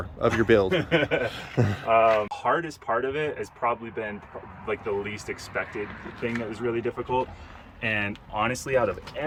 of your build? Hardest part of it has probably been like the least expected thing that was really difficult. And honestly, out of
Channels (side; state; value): both; identical; correlation 1.00